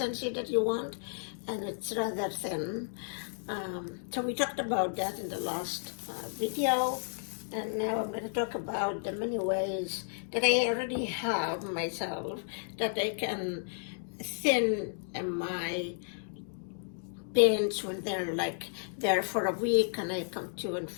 that you want, and it's rather thin. So we talked about that in the last video, and now I'm going to talk about the many ways that I already have myself that I can thin my paints when they're like there for a week and I come to and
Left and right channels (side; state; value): right; silent; digital silence